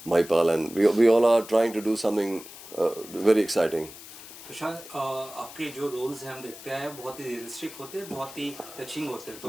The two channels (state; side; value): noise; left; hiss, 16 dB below the sound